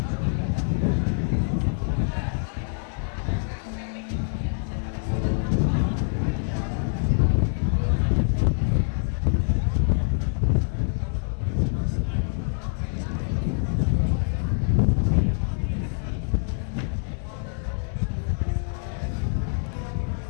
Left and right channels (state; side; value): silent; right; digital silence